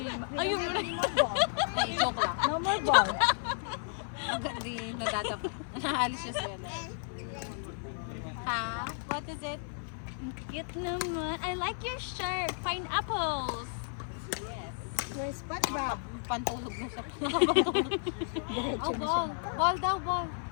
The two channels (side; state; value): right; silent; 56 dB below the other